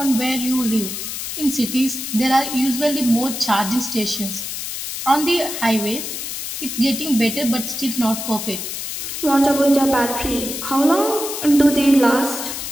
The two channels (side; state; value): left; noise; hiss, 6 dB below the sound